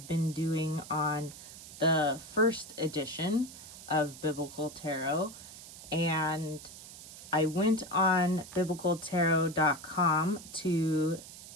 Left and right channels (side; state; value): right; noise; hiss, 15 dB below the sound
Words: been doing on the first edition of Biblical Tarot, and I went on biblicaltarot.com to